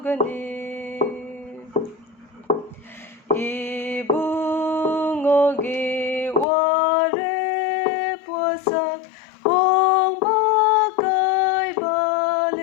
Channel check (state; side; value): drops out; right; at 6.5 s